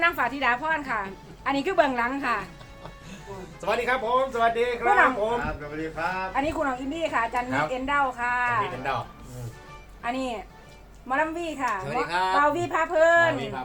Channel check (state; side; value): identical; both; correlation 1.00